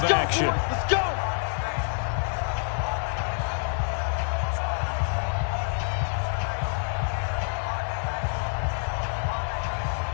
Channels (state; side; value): silent; right; 60 dB below the other